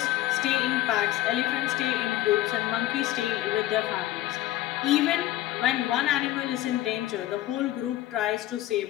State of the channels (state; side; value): quieter; right; 14.9 dB